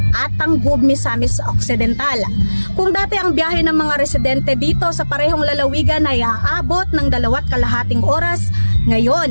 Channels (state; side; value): inverted; both; correlation -1.00